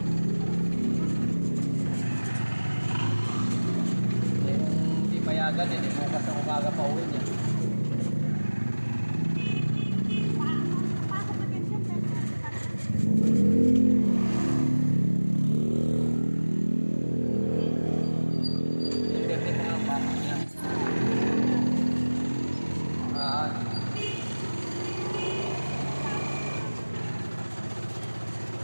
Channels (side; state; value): both; inverted; correlation -1.00